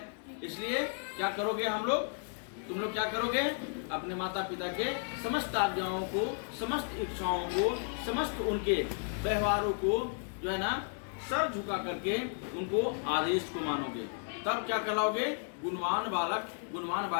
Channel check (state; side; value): silent; right; 55 dB below the other